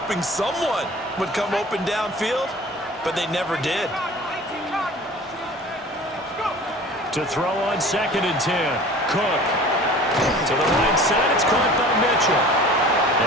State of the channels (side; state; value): both; normal; correlation 0.43